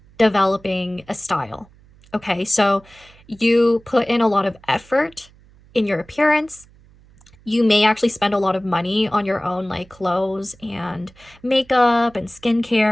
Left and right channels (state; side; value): noise; right; hum, 27 dB below the sound